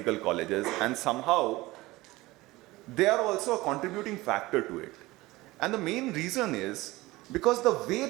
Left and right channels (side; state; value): left; quieter; 19.7 dB